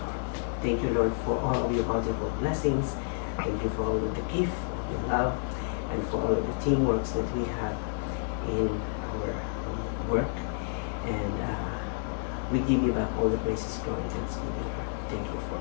Thank you, Lord, for all of your bountiful blessings. Thank you for all of the gift of your love and for all of the teamwork that we have in our work. And we give you back all the praises, glory, and thanksgiving. Thank you for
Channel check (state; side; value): silent; right; 58 dB below the other